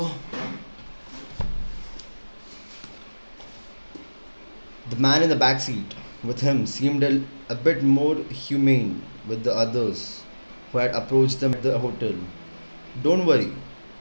The man in the back seat with him seemed a bit more humane with the others who had approached them at the hotel. Don't worry,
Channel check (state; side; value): inverted; both; correlation -1.00